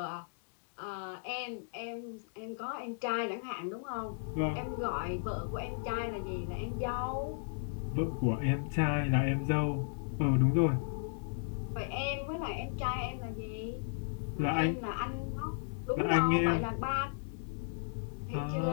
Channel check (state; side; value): silent; right; digital silence